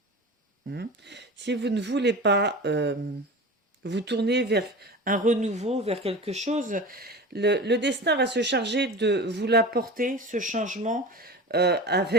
si vous ne voulez pas vous tourner vers un renouveau, vers quelque chose, le destin va se charger de vous l'apporter, ce changement,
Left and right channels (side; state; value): both; normal; correlation 0.33